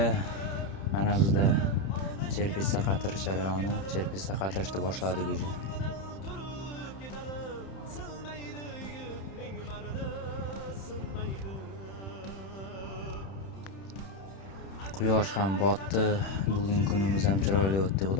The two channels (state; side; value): late; right; 31 ms